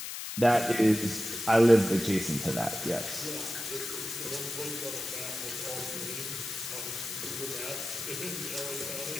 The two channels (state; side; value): noise; left; hiss, 7 dB below the sound